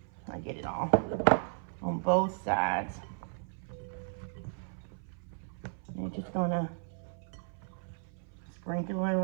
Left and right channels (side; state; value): left; silent; 55 dB below the other